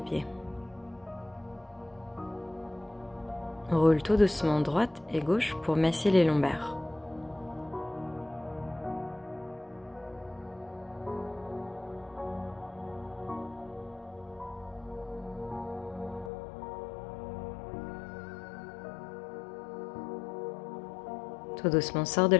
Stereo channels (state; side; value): drops out; right; at 16.3 s